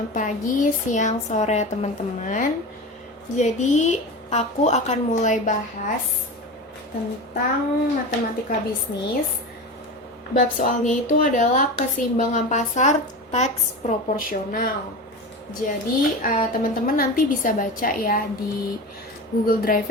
pagi, siang, sore teman-teman. Jadi aku akan mulai bahas tentang matematika bisnis. Bab soalnya itu adalah keseimbangan pasar teks proporsional. Jadi teman-teman nanti bisa baca ya di Google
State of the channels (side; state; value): both; normal; correlation 0.27